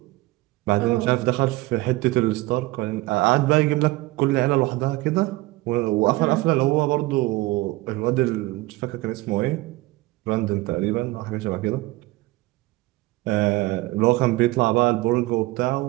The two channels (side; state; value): left; quieter; 20.2 dB